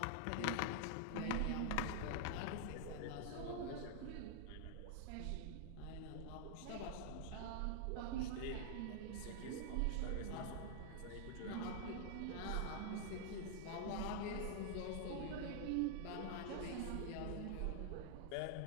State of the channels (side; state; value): both; different; correlation -0.01